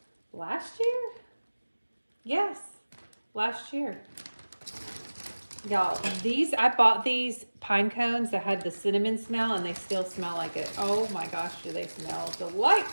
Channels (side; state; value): both; inverted; correlation -1.00